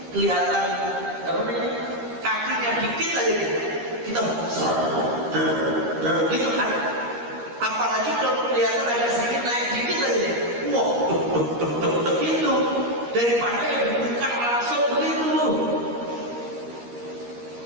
kelihatan apa namanya, kakinya dikit aja kita gitu kan. Apalagi kalau kelihatan ada sedikit naik dikit aja nih, wah, gitu. Daripada yang dibuka langsung begitu.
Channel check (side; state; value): left; late; 13 ms